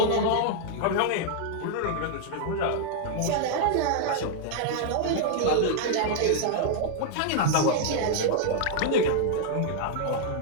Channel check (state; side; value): different; both; correlation -0.01